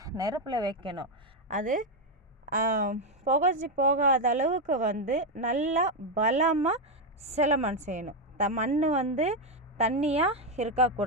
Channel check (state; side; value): normal; both; correlation 0.05